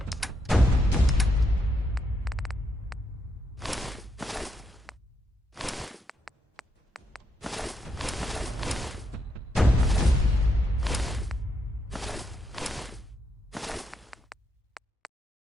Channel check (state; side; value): normal; both; correlation 0.79